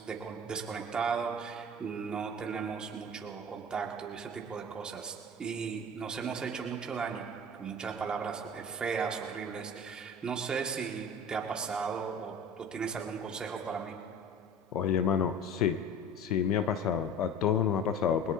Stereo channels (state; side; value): normal; both; correlation 0.38